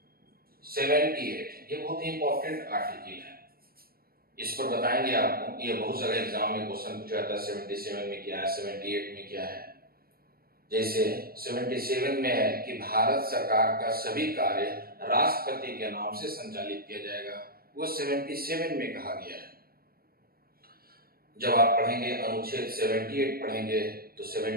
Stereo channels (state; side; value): late; left; 0.44 ms